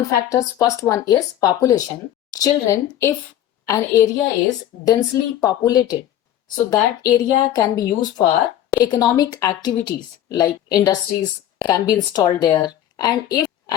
factors, first one is population. Children, if an area is densely populated, so that area can be used for economic activities, like industries can be installed there. And if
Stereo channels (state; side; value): quieter; right; 11.8 dB